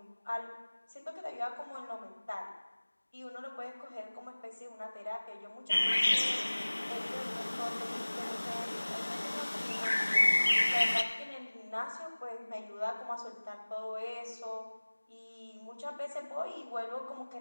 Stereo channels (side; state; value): both; inverted; correlation -1.00